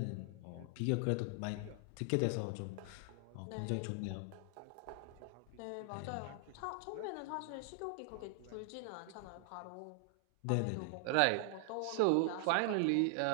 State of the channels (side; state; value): both; different; correlation 0.00